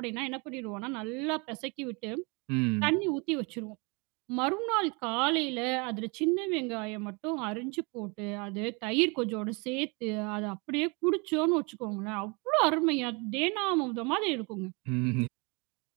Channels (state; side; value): quieter; left; 30.1 dB